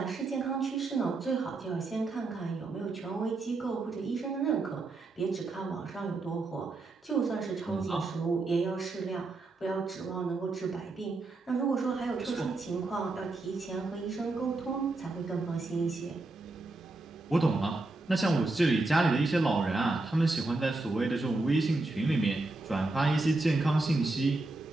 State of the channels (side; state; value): left; quieter; 3.2 dB